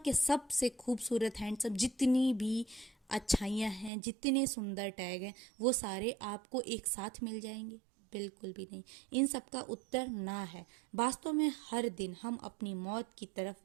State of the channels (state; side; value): drops out; left; at 3.9 s